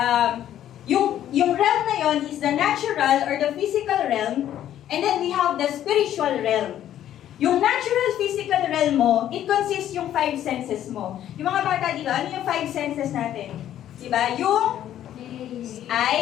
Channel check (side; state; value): right; quieter; 11.5 dB